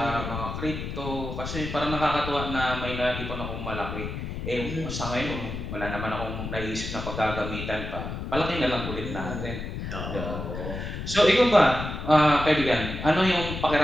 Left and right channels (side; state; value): left; noise; rumble, 6 dB below the sound